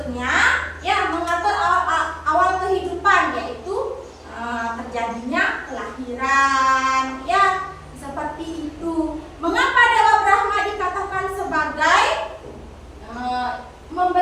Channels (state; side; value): identical; both; correlation 1.00